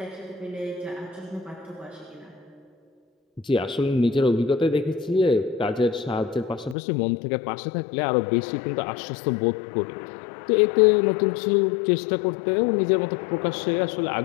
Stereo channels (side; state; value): right; drops out; at 6.8 s